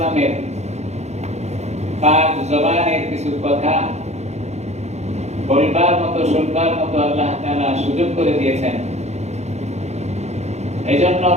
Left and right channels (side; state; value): left; late; 0.32 ms